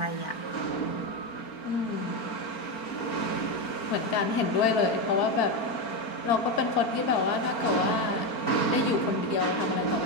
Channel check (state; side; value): late; right; 4.4 ms